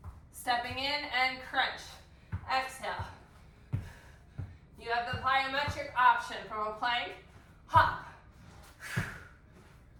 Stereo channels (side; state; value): both; identical; correlation 1.00